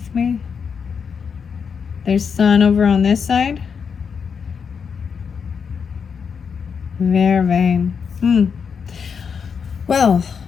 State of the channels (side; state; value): right; quieter; 6.4 dB